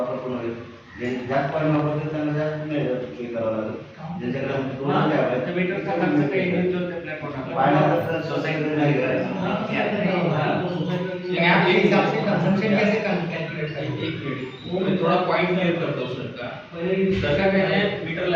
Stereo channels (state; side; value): identical; both; correlation 1.00